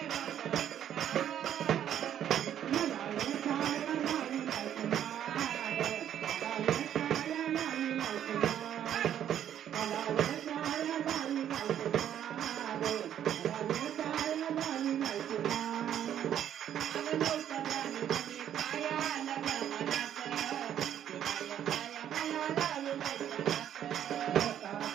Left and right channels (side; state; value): left; quieter; 10.2 dB